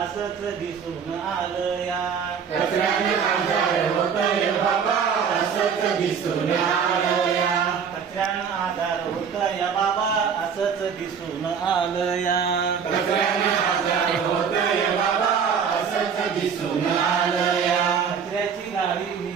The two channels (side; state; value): left; quieter; 6.8 dB